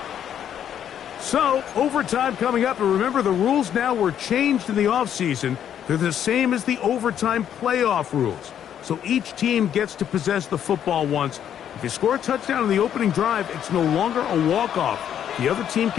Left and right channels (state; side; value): quieter; right; 9.6 dB